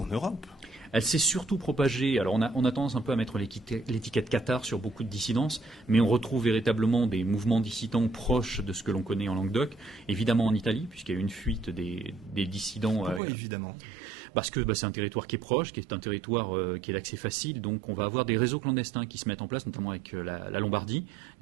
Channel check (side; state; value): left; drops out; at 13.2 s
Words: Europe. Elle s'est surtout propagée. Alors on a tendance un peu à mettre l'étiquette cathare sur beaucoup de dissidences, mais on retrouve véritablement des mouvements dissidents proches de ce que l'on connaît en Languedoc, évidemment en Italie, puisqu'il y a eu une fuite des dissidents. Pourquoi évidemment ? Parce que c'est un territoire qui est proche, qui est un territoire qui est d'accès facile, donc on va avoir des réseaux clandestins qui se mettent en place, notamment avec la Lombardie,